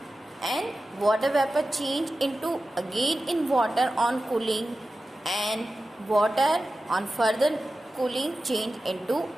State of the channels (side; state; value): both; normal; correlation 0.94